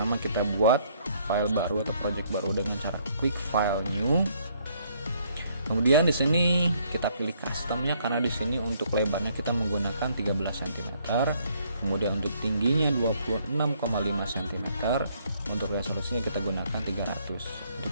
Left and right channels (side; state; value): both; inverted; correlation -0.67